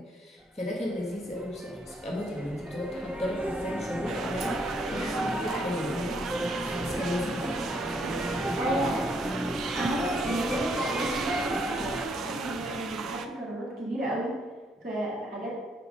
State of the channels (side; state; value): both; normal; correlation 0.71